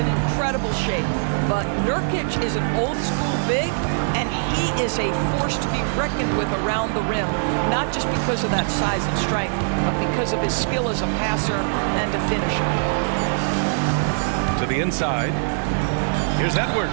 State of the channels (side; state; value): left; silent; digital silence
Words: incredible shape. But Nurkic is an old-school big, and he is a force to be reckoned with around the rim. Not just because of that size and strength, but because of his skill as a passer and a finisher. To the inside. Here's